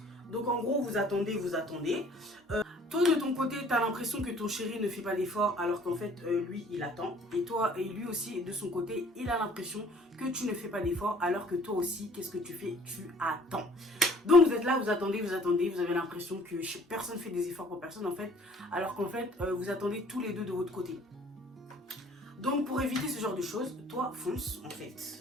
Donc en gros, vous attendez, vous attendez. Toi, de ton côté, tu as l'impression que ton chéri ne fait pas d'effort alors qu'en fait, lui, il attend. Et toi, et lui aussi, de son côté, il a l'impression que tu ne fais pas d'effort alors que toi aussi, qu'est-ce que tu fais? Tu attends. Donc, vous êtes là, vous attendez, vous avez l'impression que personne ne fait des efforts pour personne, en fait. Alors qu'en fait, vous attendez tous les deux de votre côté. Donc, pour éviter ce genre de choses, toi, fonce, en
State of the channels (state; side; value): normal; both; correlation 0.55